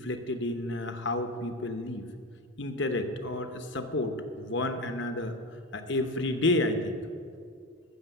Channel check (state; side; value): normal; both; correlation 0.22